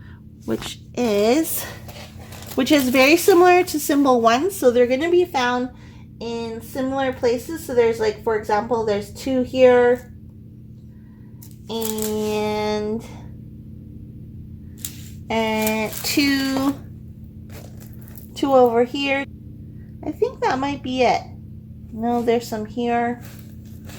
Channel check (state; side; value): identical; both; correlation 1.00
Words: which is very similar to symbol 1. So they're going to be found in similar places. So there's, like, for example, there's 2 here and 2 over here. I think that might be it. No, there's some here.